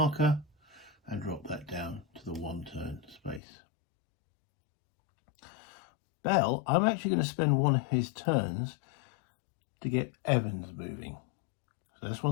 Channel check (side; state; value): right; drops out; at 3.4 s